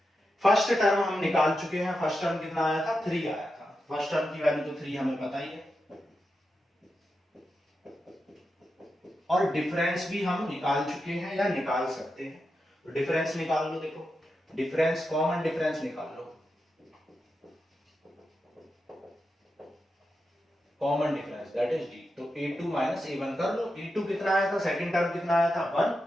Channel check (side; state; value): both; normal; correlation 0.88